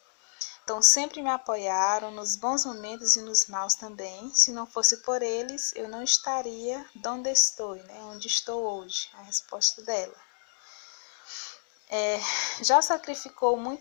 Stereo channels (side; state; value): right; silent; digital silence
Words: Então, sempre me apoiaram nos bons momentos e nos maus também. Se não fosse por eles, eu não estaria onde estou, né? Onde estou hoje. A resposta dela. Já sacrificou